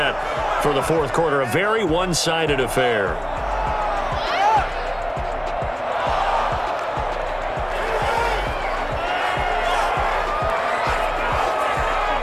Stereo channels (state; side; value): identical; both; correlation 1.00